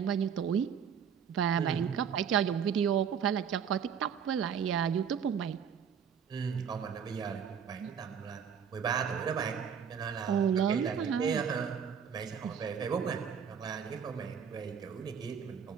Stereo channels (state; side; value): quieter; left; 7.4 dB